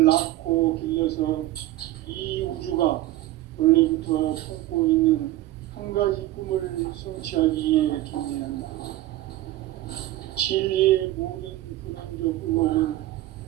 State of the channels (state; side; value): quieter; left; 15.7 dB